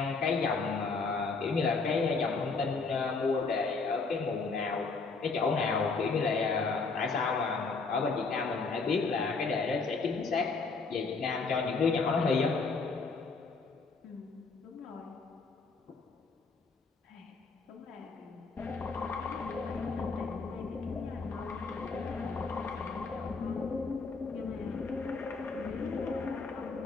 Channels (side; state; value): right; quieter; 4.3 dB